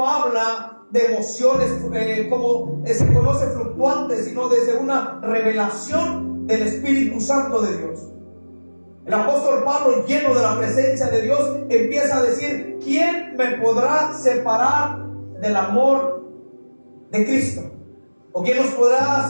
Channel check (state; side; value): inverted; both; correlation -1.00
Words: habla de emociones como se conoce fluctuantes, sino desde una revelación del Espíritu Santo de Dios. El apóstol Pablo, lleno de la presencia de Dios, empieza a decir: ¿quién me podrá separar del amor de Cristo? ¿O quién nos podrá